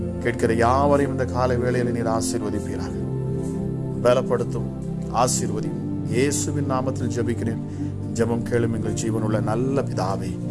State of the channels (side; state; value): both; identical; correlation 1.00